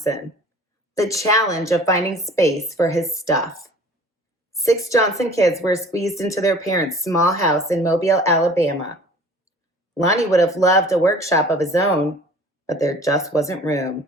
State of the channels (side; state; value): both; normal; correlation 0.47